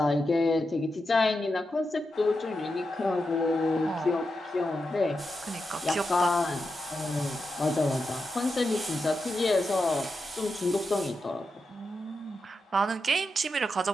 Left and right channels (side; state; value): both; normal; correlation 0.88